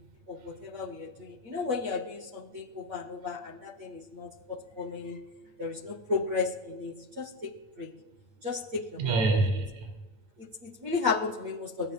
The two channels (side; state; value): left; late; 8.8 ms